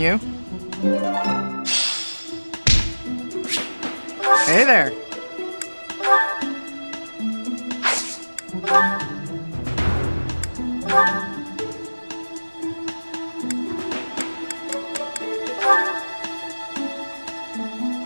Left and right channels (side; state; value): both; inverted; correlation -1.00